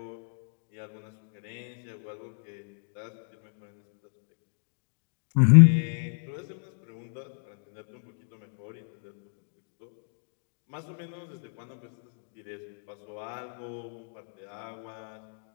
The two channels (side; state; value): right; silent; digital silence